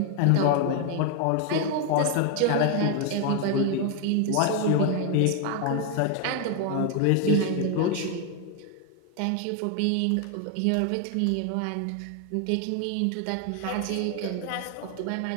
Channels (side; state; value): both; different; correlation 0.01